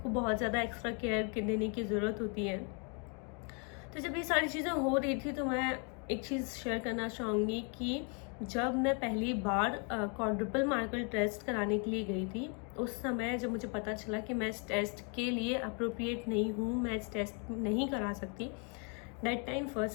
बहुत ज़्यादा एक्स्ट्रा केयर देने की ज़रूरत होती है। तो जब ये सारी चीज़ें हो रही थी तो मैं एक चीज़ शेयर करना चाहूँगी कि जब मैं पहली बार क्वाड्रुपल मार्कर टेस्ट कराने के लिए गई थी, उस समय जब मुझे पता चला कि मैं इस टेस्ट के लिए अप्रोप्रिएट नहीं हूँ, मैं इस टेस्ट नहीं करा सकती, दैट टाइम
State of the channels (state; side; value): quieter; right; 37.6 dB